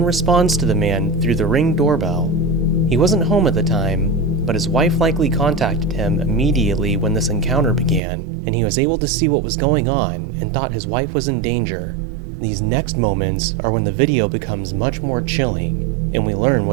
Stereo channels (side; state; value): left; drops out; at 8.0 s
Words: responds to the man through the Ring doorbell. He wasn't home at the time, but his wife likely contacted him immediately when this encounter began, and he was able to see what was going on and thought his wife was in danger. These next moments are when the video becomes much more chilling, and we learn